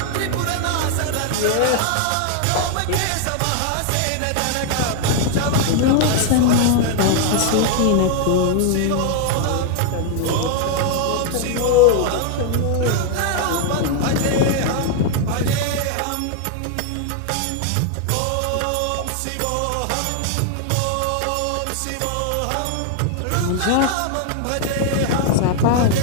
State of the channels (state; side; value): different; both; correlation 0.00